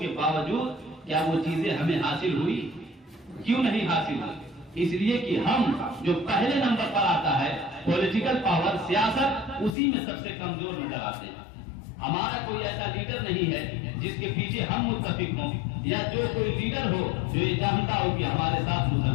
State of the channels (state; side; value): drops out; right; at 9.8 s